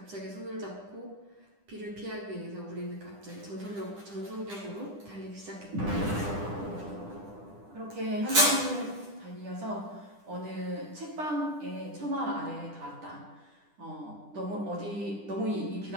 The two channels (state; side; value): late; left; 10 ms